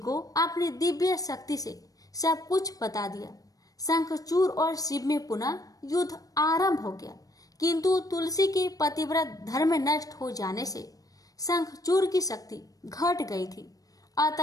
अपनी दिव्य शक्ति से सब कुछ बता दिया। शंखचूड़ और शिव में पुनः युद्ध आरंभ हो गया, किंतु तुलसी के पतिव्रत धर्म नष्ट हो जाने से शंखचूड़ की शक्ति घट गई थी।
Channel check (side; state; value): right; late; 0.18 ms